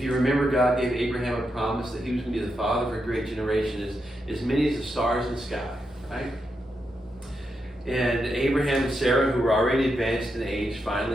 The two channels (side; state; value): both; normal; correlation 0.84